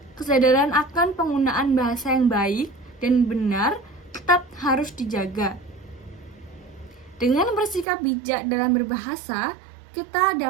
kesadaran akan penggunaan bahasa yang baik dan benar tetap harus dijaga. Dengan bersikap bijak dalam berbahasa, kita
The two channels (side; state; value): left; drops out; at 7.9 s